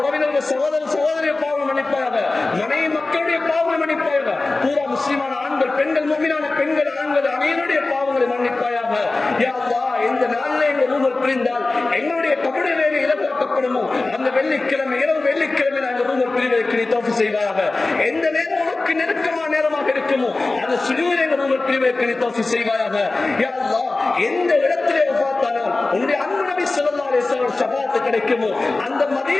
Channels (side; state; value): right; quieter; 3.3 dB